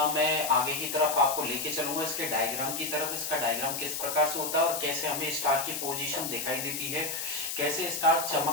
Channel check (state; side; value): noise; left; hiss, 4 dB below the sound